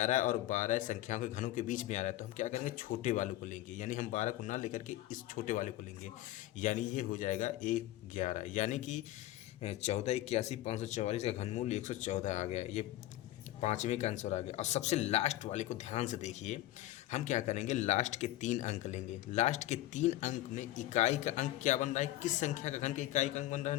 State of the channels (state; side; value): quieter; right; 15.3 dB